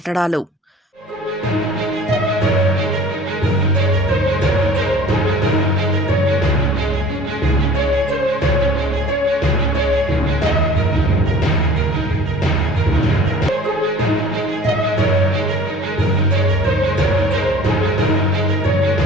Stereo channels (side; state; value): both; normal; correlation 0.48